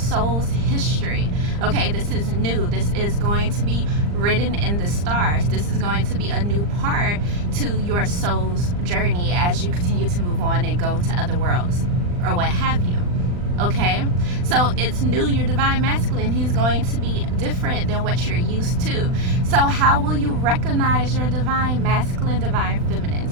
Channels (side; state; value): left; late; 39 ms